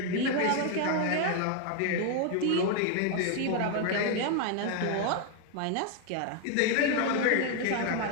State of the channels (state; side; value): different; both; correlation 0.00